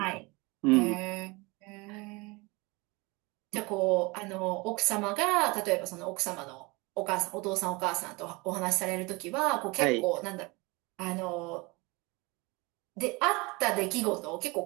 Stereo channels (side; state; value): left; quieter; 25.7 dB